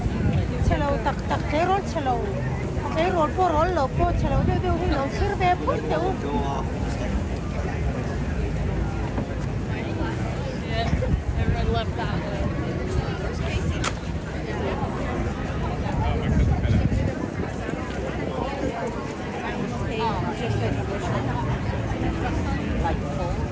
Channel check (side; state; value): both; identical; correlation 1.00